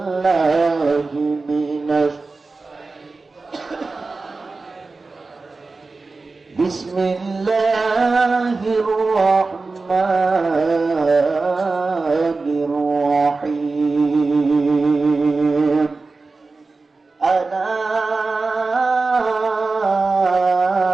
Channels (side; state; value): left; quieter; 3.8 dB